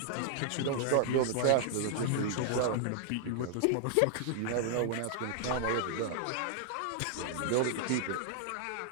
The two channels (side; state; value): both; different; correlation -0.01